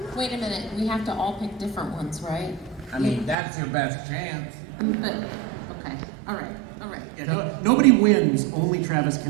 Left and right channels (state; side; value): drops out; left; at 3.4 s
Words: Wait a minute, we have to all pick different ones, right? I mean, that's your best chance. But, okay, all right. Yeah, nobody wins, only Travis